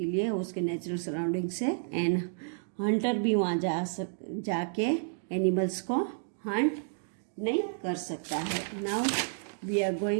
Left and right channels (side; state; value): left; silent; digital silence